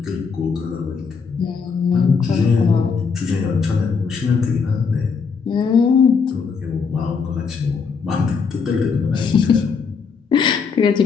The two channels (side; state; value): right; quieter; 5.5 dB